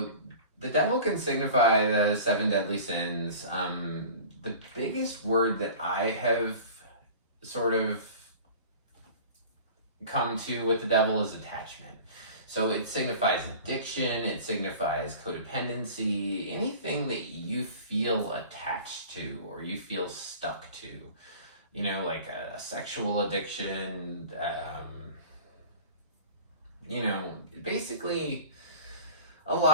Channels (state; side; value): inverted; both; correlation -0.41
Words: the Devil can signify the 7 deadly sins. The biggest word that I have sort of come to with the Devil is attachment. So it signifies addiction, it signifies codependency, anything that you feel attached to or you feel stuck to. You know, like a sexual addiction, you know, basically a